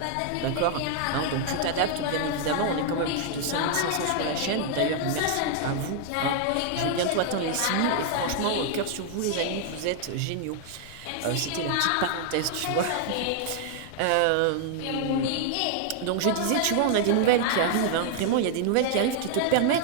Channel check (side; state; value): both; different; correlation 0.00